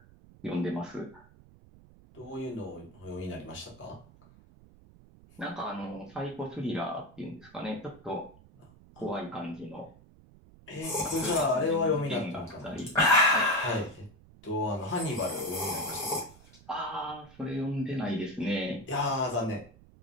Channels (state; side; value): noise; right; rumble, 23 dB below the sound